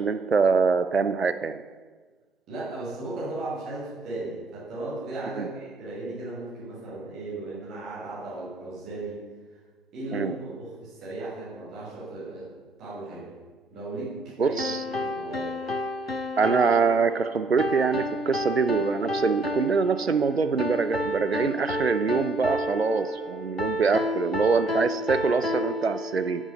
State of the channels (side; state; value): left; quieter; 3.6 dB